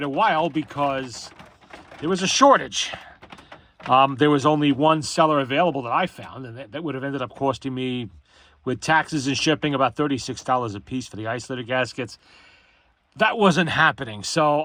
a while because there was a shortage. There was only one seller available that I found, and that would have ended up costing me, with taxes and shipping, about $36 a piece for the isolator gaskets. That wasn't happening, so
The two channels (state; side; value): identical; both; correlation 1.00